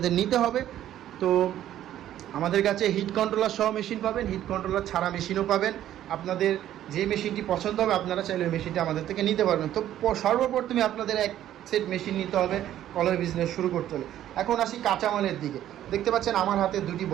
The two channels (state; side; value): quieter; left; 12.1 dB